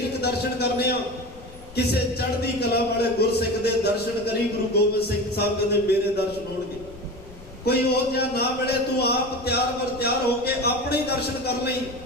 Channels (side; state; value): left; noise; rumble, 19 dB below the sound